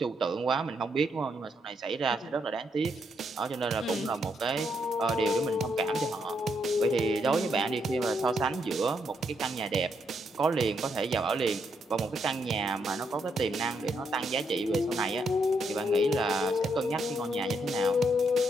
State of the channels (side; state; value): both; normal; correlation 0.77